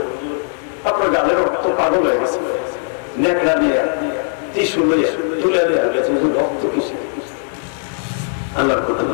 আপনার গালের রক্ত পাগল হয়ে গেছে নেকড়া দিয়ে টিস্যু লইয়া তুলে দেওয়া গেছে রক্ত কিসে আল্লাহর কথা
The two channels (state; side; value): silent; right; 67 dB below the other